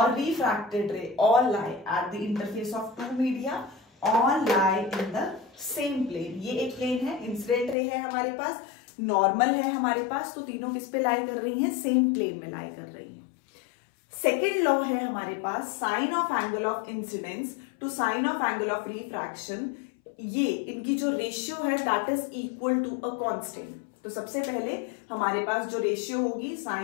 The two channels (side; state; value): right; drops out; at 7.8 s